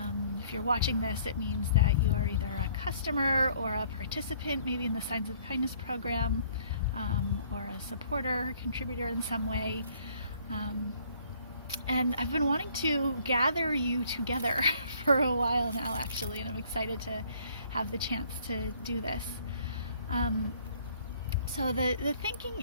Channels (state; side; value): inverted; both; correlation -0.59